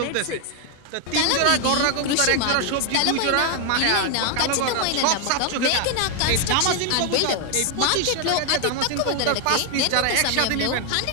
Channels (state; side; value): different; both; correlation 0.00